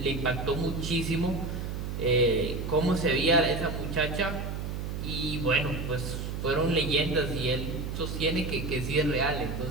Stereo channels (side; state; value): right; noise; hum, 4 dB below the sound